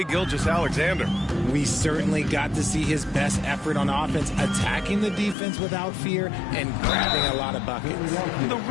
Gilgeous-Alexander. We certainly got to see his best effort on offense, attacking the defense without fear and grabbing a lot of buckets. The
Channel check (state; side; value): drops out; right; at 5.4 s